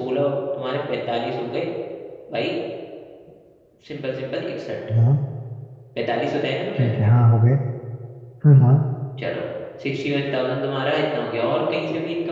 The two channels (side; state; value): both; identical; correlation 1.00